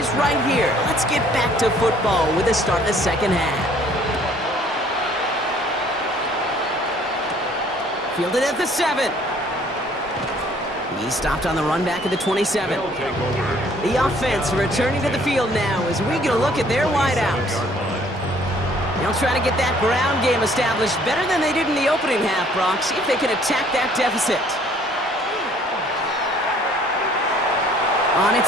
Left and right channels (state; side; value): normal; both; correlation 0.59